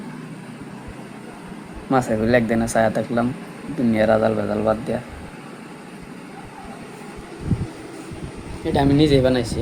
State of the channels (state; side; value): identical; both; correlation 1.00